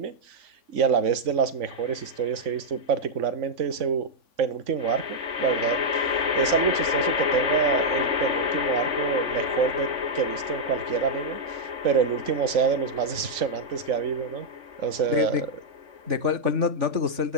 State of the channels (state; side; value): late; left; 3.5 ms